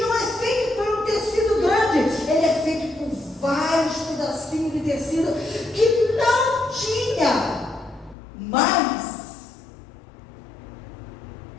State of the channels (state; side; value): drops out; right; at 8.2 s